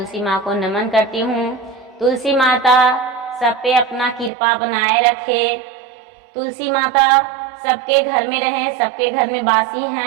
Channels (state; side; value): drops out; left; at 4.3 s